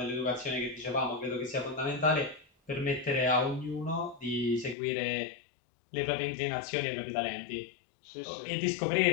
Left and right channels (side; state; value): right; drops out; at 4.8 s